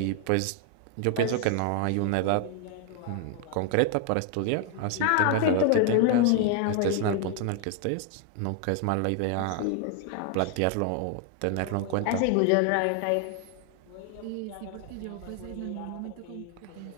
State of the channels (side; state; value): both; different; correlation 0.00